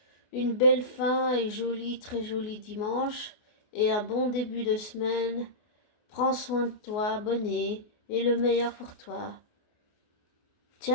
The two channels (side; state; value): right; late; 28 ms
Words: une belle fin et joli, très joli dimanche, et un bon début de semaine. Prends soin de toi, abonné, et le meilleur pour toi.